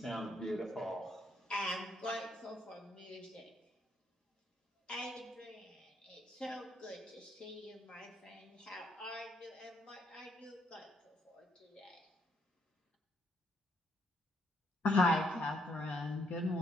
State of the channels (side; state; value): both; normal; correlation 0.73